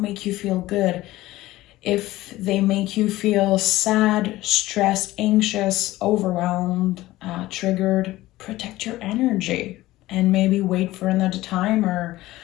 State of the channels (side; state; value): right; quieter; 17.1 dB